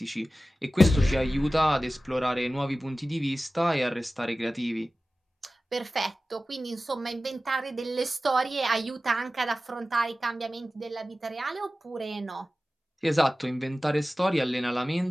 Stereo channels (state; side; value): normal; both; correlation 0.95